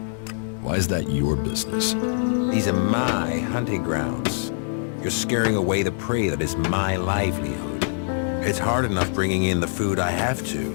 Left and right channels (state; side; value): silent; right; 63 dB below the other